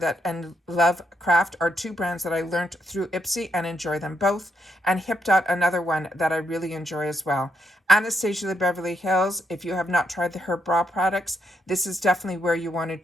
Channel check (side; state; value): both; normal; correlation 0.78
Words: that, and Love Craft are 2 brands that I learned through Ipsy and enjoy them both. And Hip Dot, another one that I really enjoy as well. Anastasia the Beverly Hills, if you have not tried her brow products, this is definitely where you want to